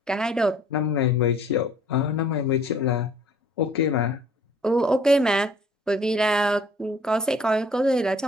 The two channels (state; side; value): normal; both; correlation 0.55